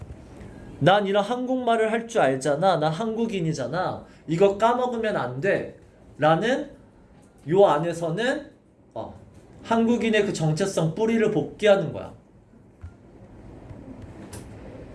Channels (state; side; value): identical; both; correlation 1.00